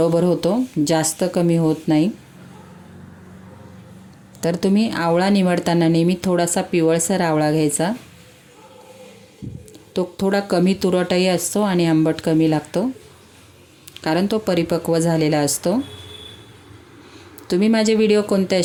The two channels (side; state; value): both; identical; correlation 1.00